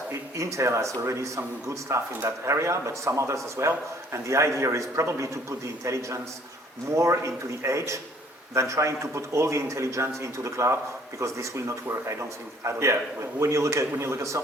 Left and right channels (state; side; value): normal; both; correlation 0.58